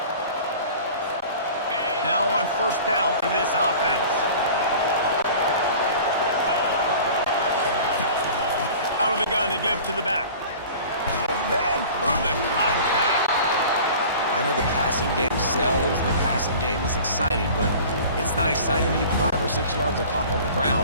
Now on first down for this offense. Out of the gun to give to the back. Man, through the contact. I know the passing game sells, the passing game is exciting, but it's not exciting to get 5 or 6 yards of pop on the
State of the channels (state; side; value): inverted; both; correlation -0.42